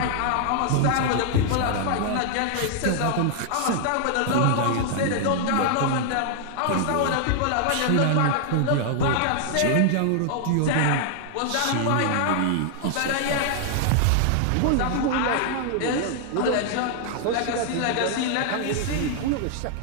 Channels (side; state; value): both; different; correlation 0.00